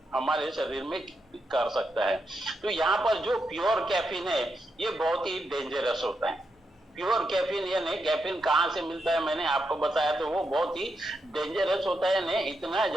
हमारे शरीर में कर सकता है। तो यहाँ पर जो प्योर कैफीन है ये बहुत ही डेंजरस होता है। प्योर कैफीन यानी कैफीन कहाँ से मिलता है मैंने आपको बताया, तो वो बहुत ही डेंजरस होता है, यानी इतना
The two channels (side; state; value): both; normal; correlation 0.84